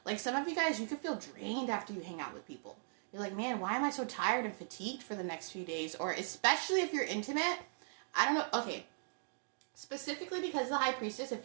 Like some of you guys, you could feel drained after you hang out with people. You're like, man, why am I so tired and fatigued for the next few days? Or especially if you're intimate, I don't know, okay. Specifically because of the High Priestess,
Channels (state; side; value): silent; left; digital silence